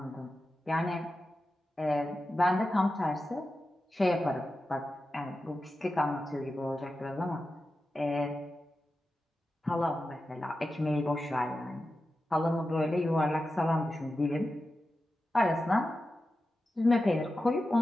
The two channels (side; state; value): both; normal; correlation 0.92